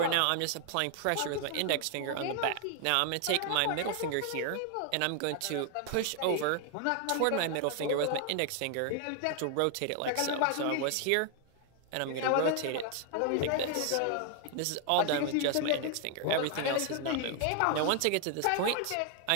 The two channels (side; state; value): both; different; correlation 0.00